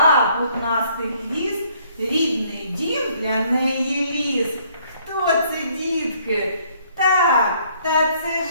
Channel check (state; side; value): inverted; both; correlation -0.64